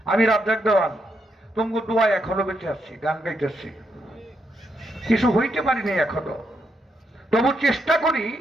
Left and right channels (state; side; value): normal; both; correlation 0.80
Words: আমি রাজ্জাক দেওয়ান তোমাকে দোয়া এখনো বেঁচে আসছি, গান গাইতেছি, কিছু হইতে পারিনি এখনো। তবু চেষ্টা করি